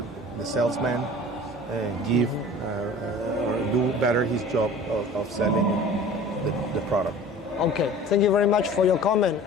the salesman give or do better his job of selling the product. Okay, thank you very much for your comment.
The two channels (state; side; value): normal; both; correlation 0.42